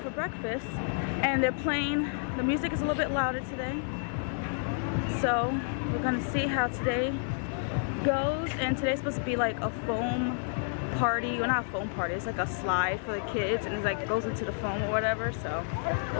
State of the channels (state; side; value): silent; right; digital silence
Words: for breakfast, and they're playing. The music is a little bit louder today. So we're gonna see how today goes, and today's supposed to be like a foam party. Well, not a foam party, it's like a slide for the kids, and it's like goes into the foam or whatever, so